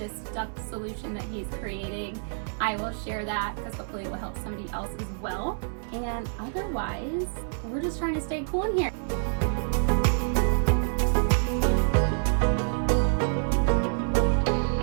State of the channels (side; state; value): left; silent; digital silence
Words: duct solution that he's creating, I will share that, because hopefully it will help somebody else as well. And otherwise, we're just trying to stay cool in here.